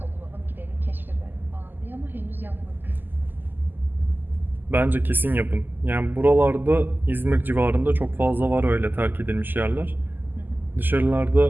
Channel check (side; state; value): left; late; 0.090 ms